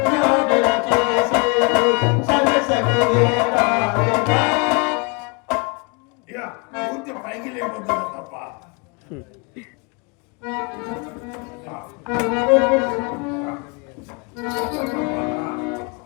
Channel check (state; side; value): quieter; right; 32.0 dB